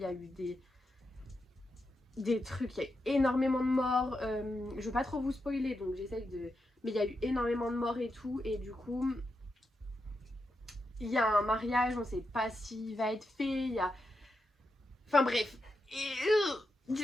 y a eu des des trucs, il y a eu énormément de morts. Je veux pas trop vous spoiler, donc j'essaye de... Mais il y a eu énormément de morts et tout, et du coup, il y a un mariage, on sait pas s'il va être fait, il y a... Enfin bref. Et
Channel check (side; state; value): both; normal; correlation 0.86